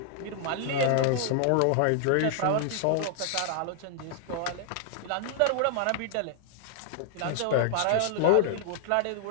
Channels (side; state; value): both; different; correlation 0.00